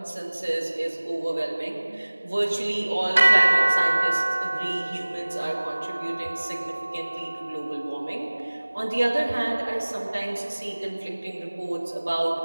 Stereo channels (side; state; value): both; inverted; correlation -1.00